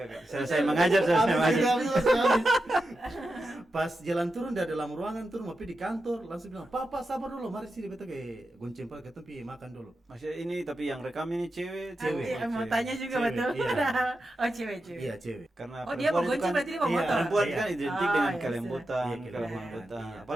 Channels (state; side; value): normal; both; correlation 0.89